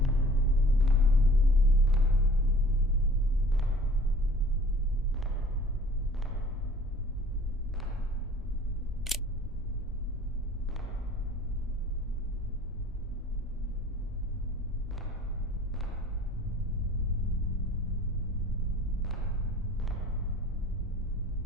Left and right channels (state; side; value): noise; left; rumble, 19 dB below the sound